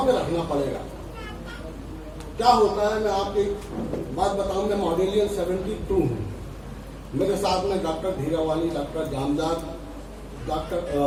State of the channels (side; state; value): both; identical; correlation 1.00